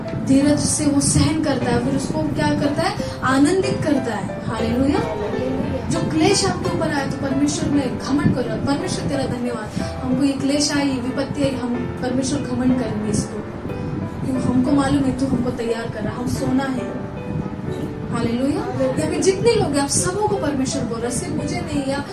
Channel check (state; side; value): identical; both; correlation 1.00